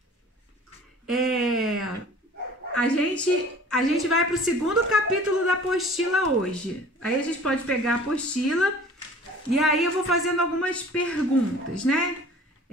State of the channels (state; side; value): normal; both; correlation 0.47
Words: a gente vai para o segundo capítulo da apostila hoje. Aí a gente pode pegar a apostila e aí eu vou fazendo algumas perguntas, né?